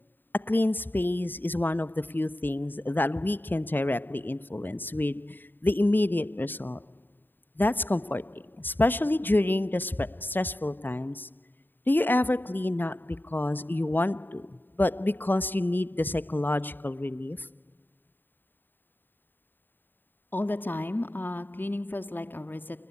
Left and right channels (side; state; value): right; late; 0.093 ms